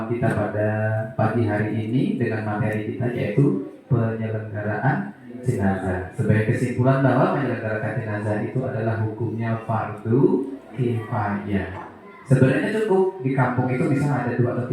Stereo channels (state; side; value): identical; both; correlation 1.00